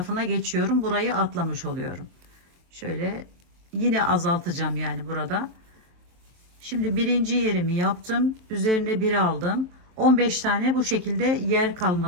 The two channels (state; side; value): late; left; 23 ms